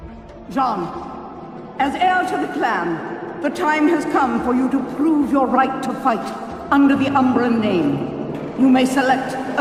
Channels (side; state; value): both; identical; correlation 1.00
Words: Jean, as heir to the clan, the time has come for you to prove your right to fight under the Umbran name. You may select